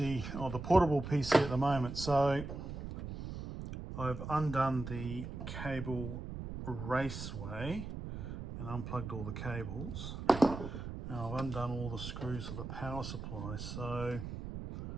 or the portable PC at the moment. So I've undone the cable raceway and unplugged all the cables. Now I've undone all the screws for the power supply, so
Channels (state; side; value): noise; right; rumble, 7 dB below the sound